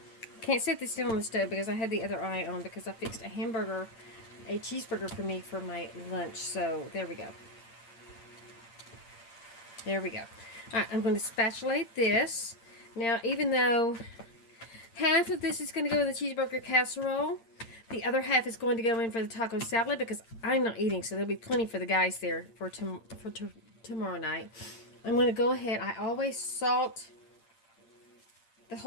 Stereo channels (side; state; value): right; late; 8.8 ms